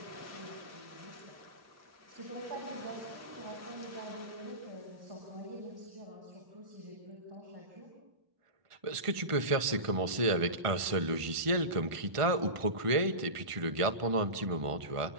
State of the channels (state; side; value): late; left; 1.5 ms